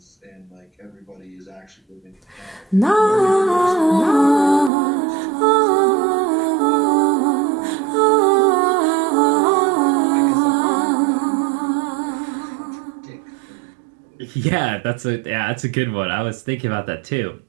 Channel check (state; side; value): drops out; left; at 4.7 s